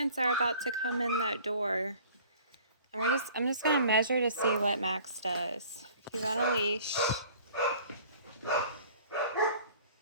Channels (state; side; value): inverted; both; correlation -0.50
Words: are about to come in that door. And I'm just gonna measure to see what Max does. He's on a leash.